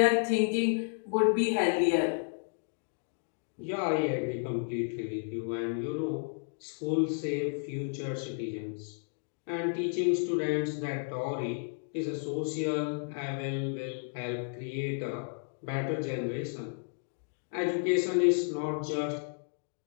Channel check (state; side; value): silent; right; digital silence